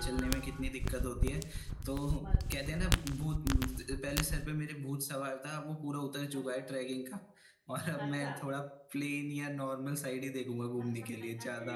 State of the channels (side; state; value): both; identical; correlation 1.00